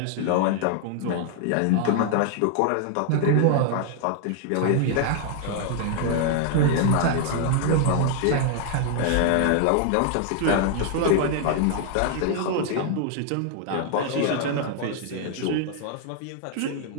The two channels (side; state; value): both; different; correlation 0.00